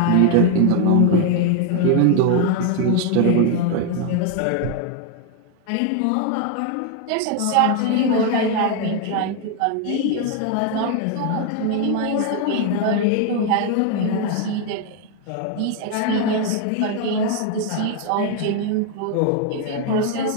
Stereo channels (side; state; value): both; different; correlation 0.00